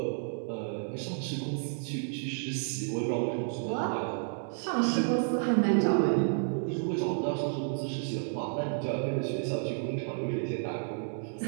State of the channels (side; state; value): left; silent; digital silence